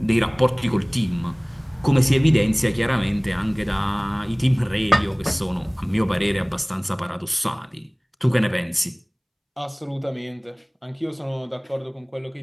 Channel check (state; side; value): identical; both; correlation 1.00